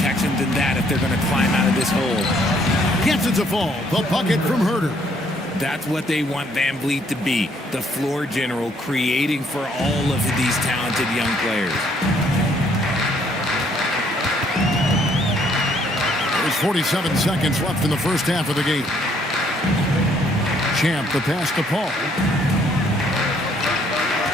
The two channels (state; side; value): normal; both; correlation 0.66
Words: than that if they're going to climb out of this hole. Gets it to fall. The bucket from Herter. That's what they want Van Vliet to be, the floor general, creating for all of these talented young players. There's 47 seconds left in the first half of the game. Champ, the pass to Paul.